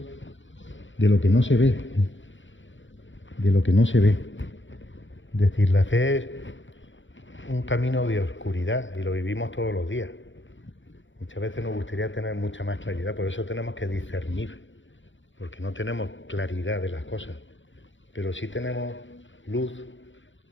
de lo que no se ve, de lo que no se ve. Es decir, la fe es un camino de oscuridad y lo vivimos todos los días. Muchas veces nos gustaría tener mucha más claridad, por eso tenemos que discernir, porque no tenemos claridad de las cosas, pero sí tenemos luz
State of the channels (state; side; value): late; right; 0.55 ms